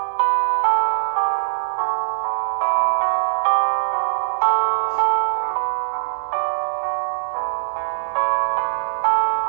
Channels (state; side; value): silent; left; digital silence